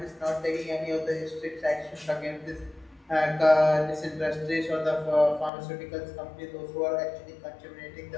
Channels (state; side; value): drops out; right; at 5.5 s